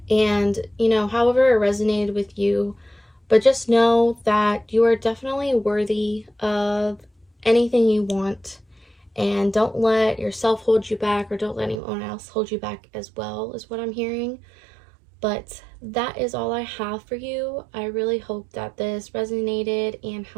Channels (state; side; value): drops out; left; at 11.8 s